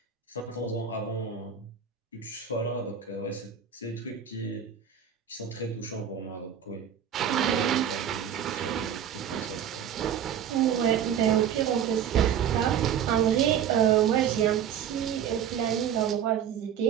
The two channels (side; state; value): left; quieter; 8.8 dB